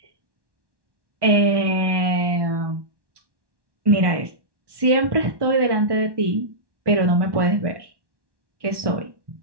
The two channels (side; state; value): left; late; 1.1 ms